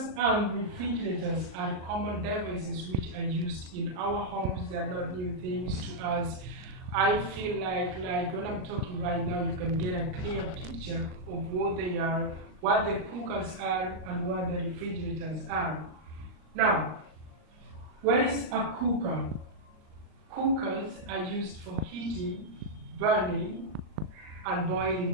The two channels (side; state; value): left; late; 38 ms